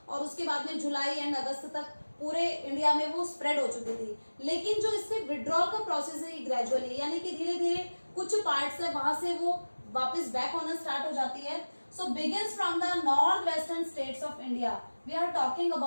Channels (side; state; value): both; inverted; correlation -1.00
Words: और उसके बाद में जुलाई एंड अगस्त तक पूरे इंडिया में वो स्प्रेड हो चुकी थी। लेकिन जो इससे विड्रॉल का प्रोसेस है ये ग्रेजुअली, यानी कि धीरे धीरे कुछ पार्ट्स है वहां से वो वापस बैक होना स्टार्ट हो जाती है। So begins from the north western states of India. We are talking